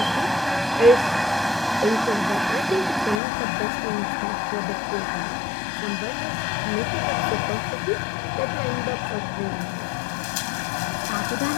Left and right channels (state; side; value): drops out; right; at 3.2 s